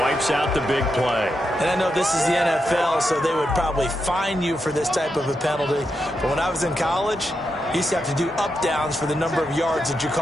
out the big play. And I know this is the NFL, so they would probably fine you for this type of a penalty. But when I was in college, You used to have to do up-downs for the number of yards that you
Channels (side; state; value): both; normal; correlation 0.85